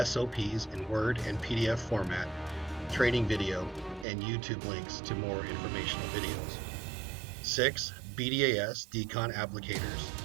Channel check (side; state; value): left; drops out; at 4.0 s